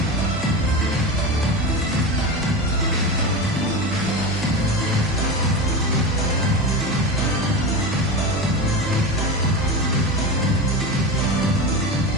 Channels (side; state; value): both; normal; correlation 0.24